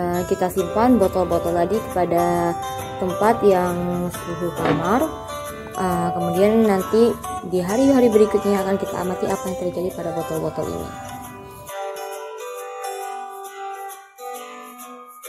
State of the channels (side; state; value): both; identical; correlation 1.00